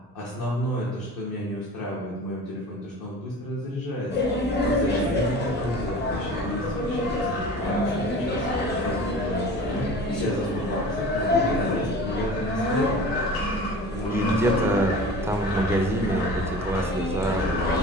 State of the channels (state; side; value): normal; both; correlation 0.39